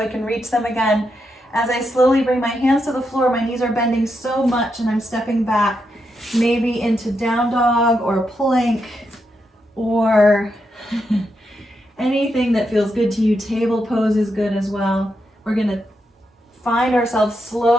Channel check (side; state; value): both; normal; correlation 0.83